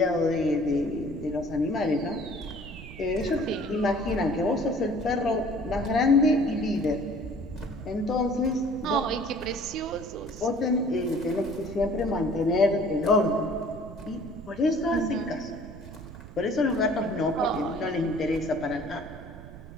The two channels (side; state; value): right; noise; rumble, 14 dB below the sound